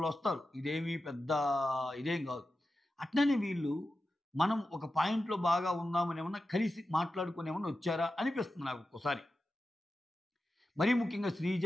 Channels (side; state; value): both; normal; correlation 0.92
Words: ఇదేమీ పెద్ద ఇదేం గాదు. అట్లనే వీళ్ళు మనం ఒక పాయింట్‌లో బాగా ఉందామని ఏమన్నా కలిసి మాట్లాడుకొని ఏమన్నా వచ్చారా అనిపిస్తుంది నాకు ఒక్కోసారి. మరీ ముఖ్యంగా శ్రీజ,